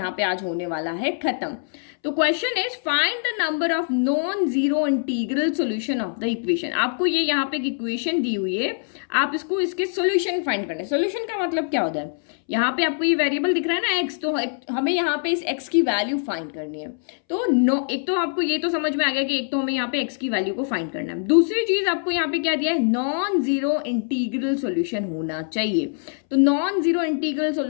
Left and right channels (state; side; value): silent; right; 63 dB below the other